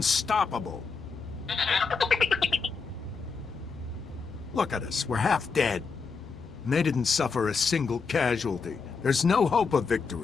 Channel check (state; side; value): quieter; right; 5.1 dB